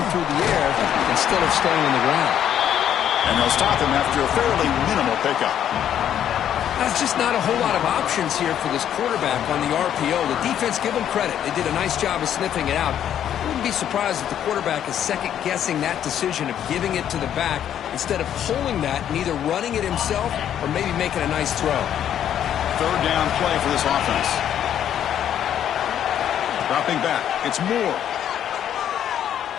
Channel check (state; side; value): quieter; right; 10.1 dB